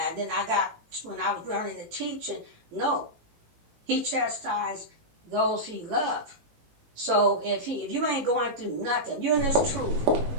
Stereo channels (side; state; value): left; late; 18 ms